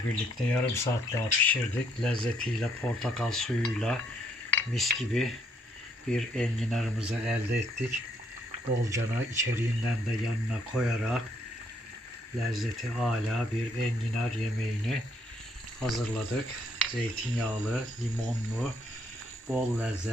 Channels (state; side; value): normal; both; correlation 0.70